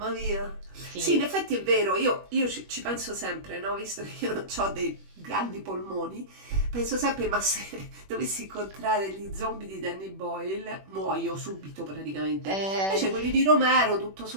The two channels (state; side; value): late; left; 21 ms